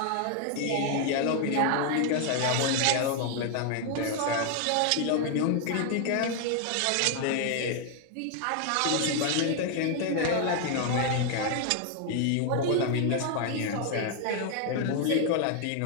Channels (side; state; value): both; different; correlation 0.00